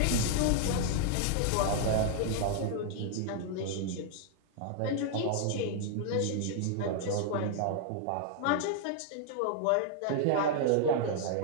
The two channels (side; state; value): both; different; correlation 0.00